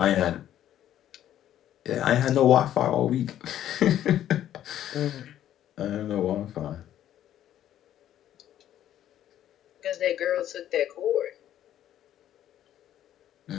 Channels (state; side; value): quieter; right; 11.6 dB